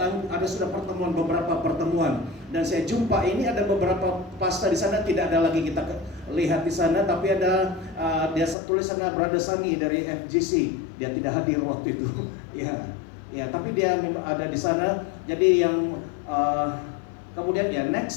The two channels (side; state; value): right; drops out; at 8.6 s